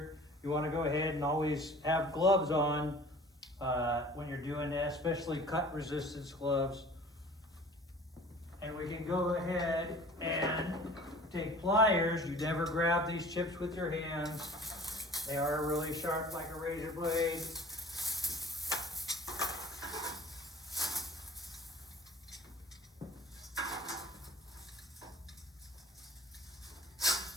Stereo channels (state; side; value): normal; both; correlation 0.46